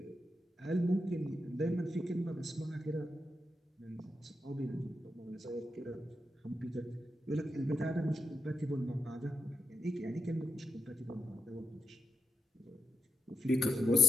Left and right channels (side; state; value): both; normal; correlation 0.86